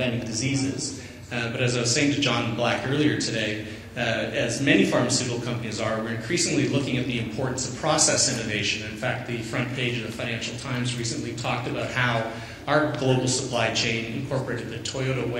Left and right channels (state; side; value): identical; both; correlation 1.00